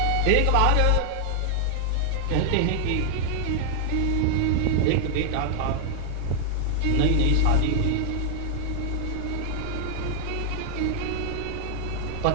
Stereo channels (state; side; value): different; both; correlation -0.01